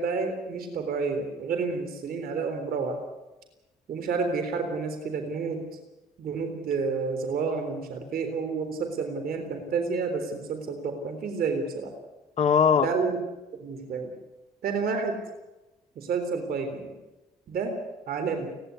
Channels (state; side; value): normal; both; correlation 0.40